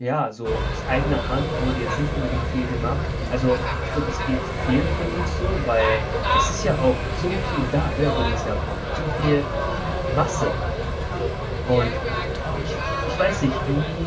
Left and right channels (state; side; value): identical; both; correlation 1.00